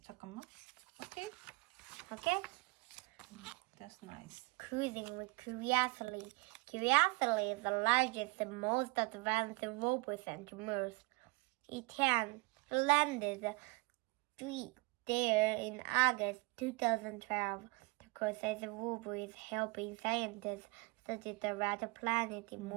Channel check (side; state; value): left; quieter; 27.2 dB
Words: 잠깐만. Okay. Okay. That's nice. Cruising with curiosity. Curiosity is the largest and most advanced robot sent to Mars. It landed there in August 2012. The Curiosity robot is helping scientists study the red planet in